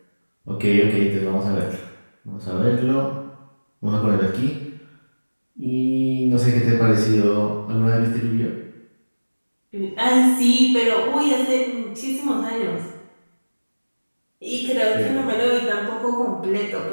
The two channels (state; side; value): inverted; both; correlation -1.00